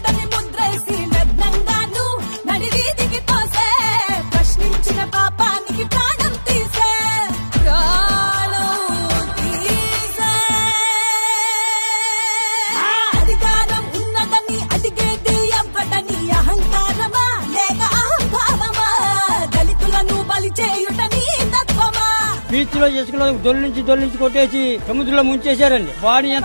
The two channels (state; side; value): inverted; both; correlation -1.00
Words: బీచ్ లో ఇసుకలో దొల్లించి కొట్టేసి సముద్రంలో ముంచేశారండి. బాడీ